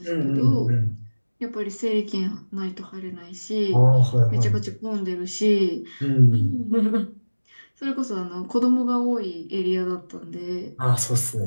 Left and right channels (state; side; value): inverted; both; correlation -1.00